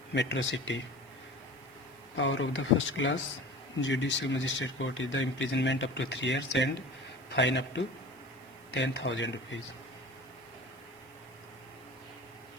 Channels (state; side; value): noise; right; hiss, 27 dB below the sound